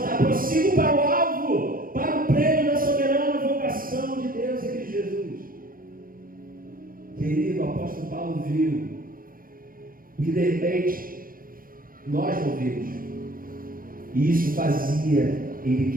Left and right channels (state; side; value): late; left; 0.41 ms